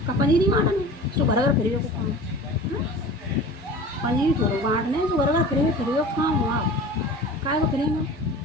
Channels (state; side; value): normal; both; correlation 0.38